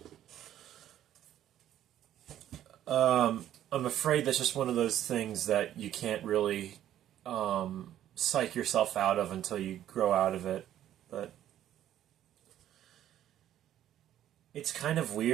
I'm afraid that's just one of those things that you can't really psych yourself out of until you grow out of it. But it's kind of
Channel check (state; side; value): quieter; left; 11.7 dB